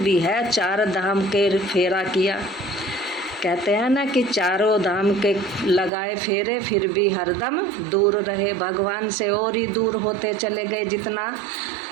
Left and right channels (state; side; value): drops out; left; at 5.9 s